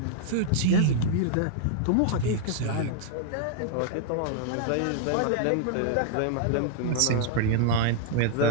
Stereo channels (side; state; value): both; different; correlation -0.01